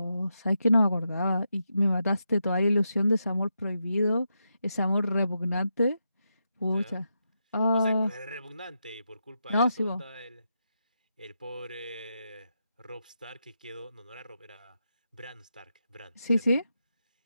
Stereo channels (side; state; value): both; inverted; correlation -0.85